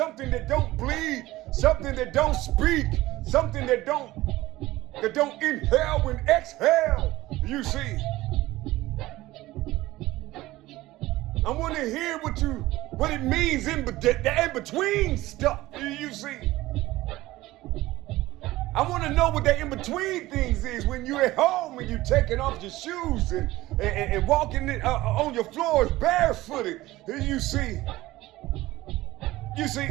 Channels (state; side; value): quieter; left; 17.7 dB